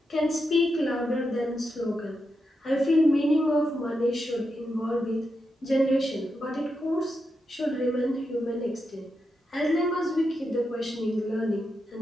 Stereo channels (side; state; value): both; normal; correlation 0.86